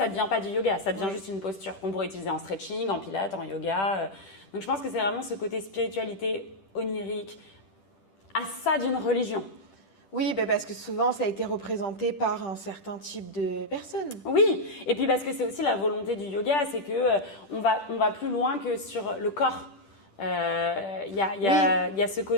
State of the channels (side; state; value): right; late; 10 ms